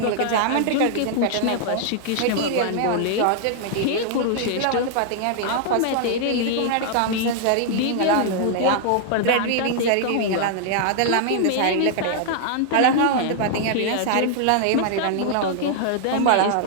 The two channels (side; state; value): both; different; correlation -0.01